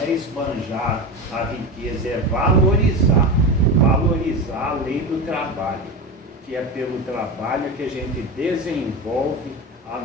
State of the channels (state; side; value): normal; both; correlation 0.22